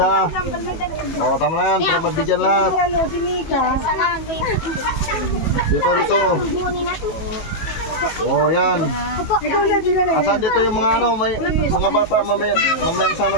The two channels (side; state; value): right; late; 19 ms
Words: ha. Oh, tama na yan, para mabigyan lahat. Ano, si Mika? Dito, dito. Oh, yan. Ikaw na, di na na. Asan dito yung mga ano, may mga bata, mamaya sana